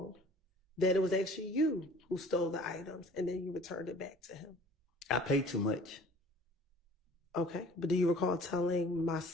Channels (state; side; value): normal; both; correlation 0.49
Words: that it was actually you who stole the items and then you returned it back to him? I paid too much. Okay. But do you recall telling